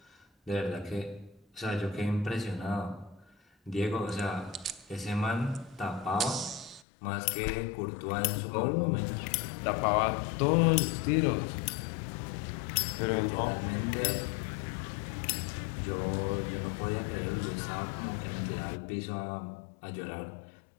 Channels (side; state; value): right; drops out; at 6.9 s